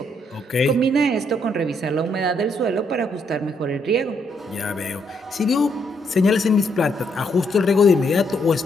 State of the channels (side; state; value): both; normal; correlation 0.74